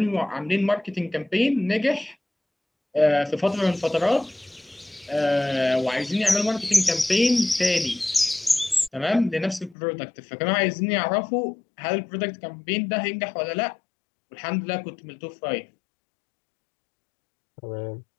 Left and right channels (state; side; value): drops out; right; at 9.8 s